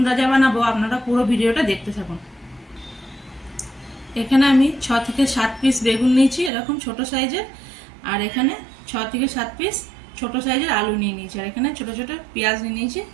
রাজা বানাবো। আপনারা পুরো ভিডিওটা দেখতে থাকুন। এখানে আমি 6 থেকে 7 পিস বেগুন নিয়েছি, এরকম ছোট সাইজের। আর এখানে 6 থেকে 7 পিস ছোট সাইজের আলু নিয়ে নিয়েছি। আর এখানে ছোট ছোট পেঁয়াজ নিয়ে নিয়েছি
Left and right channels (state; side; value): drops out; left; at 6.5 s